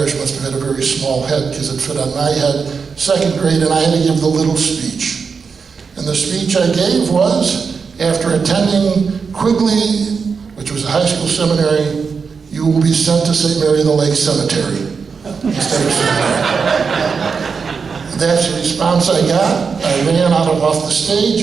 must have had a very small head because it fit on my head. Second grade, and I had to give the little speech. And the speech I gave was, after attending Quigley, which was a high school seminary, you will be sent to St. Mary the Lake Cemetery instead of seminary. That's the response I got. I ran off the stage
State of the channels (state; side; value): quieter; left; 5.5 dB